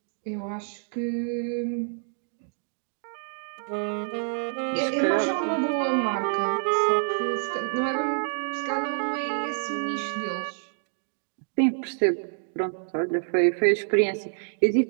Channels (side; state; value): left; silent; digital silence